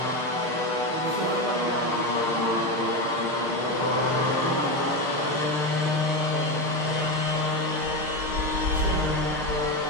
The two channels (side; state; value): left; late; 6.5 ms